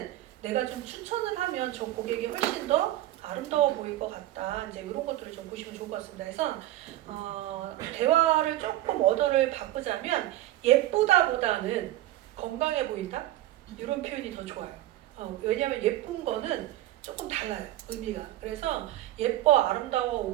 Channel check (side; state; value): left; quieter; 14.9 dB